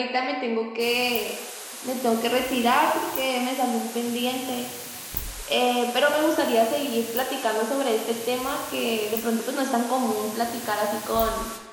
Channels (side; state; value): both; identical; correlation 1.00